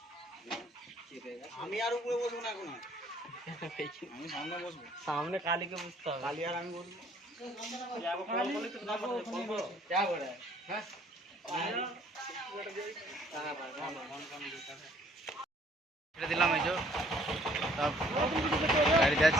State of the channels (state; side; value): normal; both; correlation 0.60